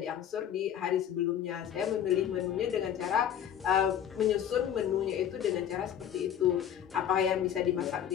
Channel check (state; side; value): quieter; right; 9.6 dB